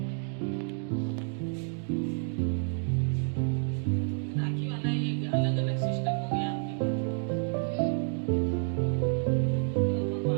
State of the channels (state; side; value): silent; left; 55 dB below the other